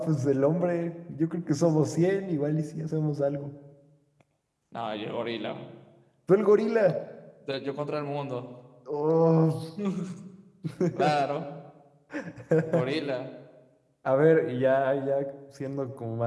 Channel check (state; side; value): identical; both; correlation 1.00